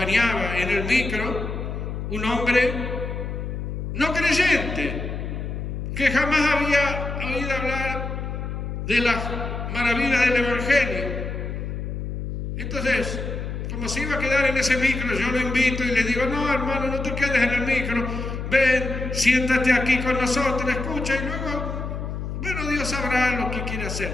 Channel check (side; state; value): left; noise; hum, 5 dB below the sound